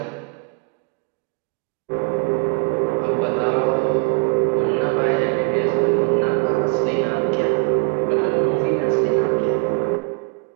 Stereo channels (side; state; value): left; quieter; 35.7 dB